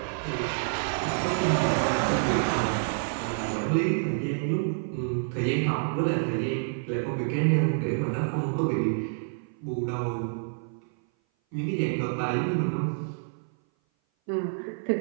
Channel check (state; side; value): silent; left; 57 dB below the other